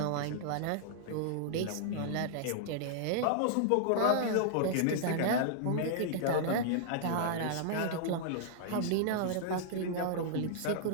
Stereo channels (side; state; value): both; different; correlation -0.01